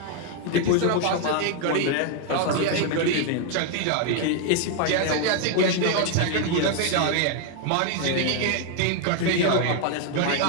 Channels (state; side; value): different; both; correlation 0.01